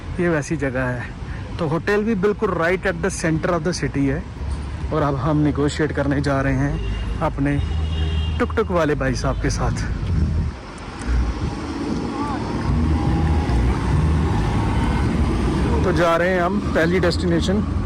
ये वैसी जगह है। तो होटल भी बिल्कुल right at the centre of the city है। और अब हम निगोशिएट करने जा रहे हैं अपने टुक टुक वाले भाई साहब के साथ। तो जा रहे हैं हम पहली डेस्टिनेशन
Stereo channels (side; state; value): both; identical; correlation 1.00